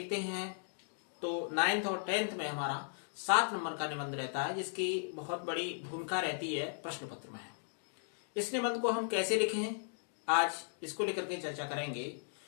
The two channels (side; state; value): right; silent; digital silence